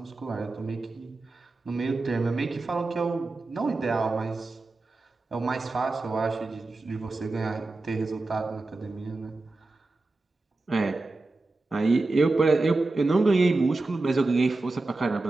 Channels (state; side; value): quieter; left; 3.3 dB